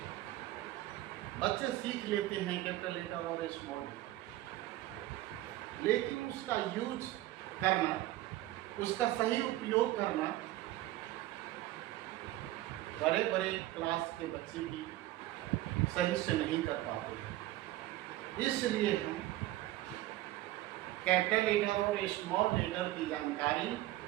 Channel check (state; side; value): quieter; left; 16.1 dB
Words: बच्चे सीख लेते हैं कैपिटल लेटर और स्मॉल लेटर, लेकिन उसका यूज करना, उसका सही उपयोग करना बड़े बड़े क्लास के बच्चे भी सही से नहीं कर पाते। इसलिए हम कैपिटल लेटर और स्मॉल लेटर की जानकारी